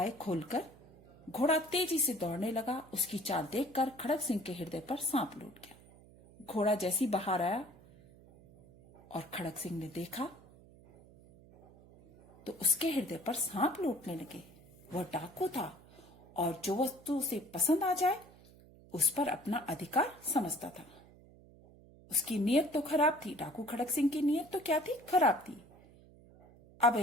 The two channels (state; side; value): noise; right; hum, 23 dB below the sound